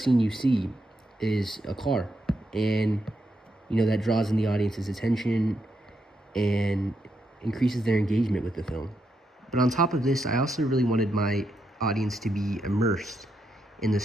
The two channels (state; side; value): normal; both; correlation 0.81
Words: scene you see is a car, and that draws in the audience's attention and increases their engagement with the film. But on top of this, I also really wanted my audience to be immersed in the